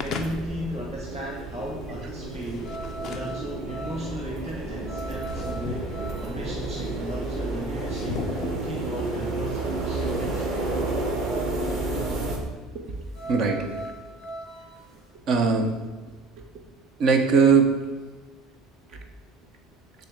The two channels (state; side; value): quieter; left; 3.2 dB